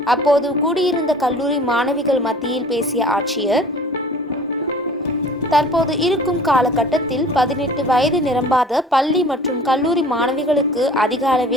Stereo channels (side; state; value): both; normal; correlation 0.46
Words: அப்போது கூடியிருந்த கல்லூரி மாணவிகள் மத்தியில் பேசிய ஆட்சியர், தற்போது இருக்கும் காலகட்டத்தில் 18 வயது நிரம்பாத பள்ளி மற்றும் கல்லூரி மாணவிகளுக்கு அதிக